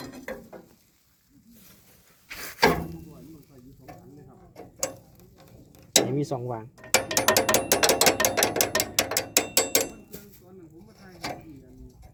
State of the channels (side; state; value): both; identical; correlation 1.00